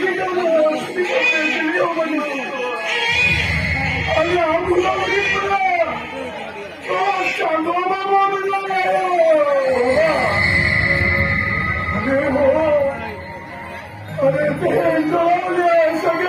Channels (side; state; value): both; identical; correlation 1.00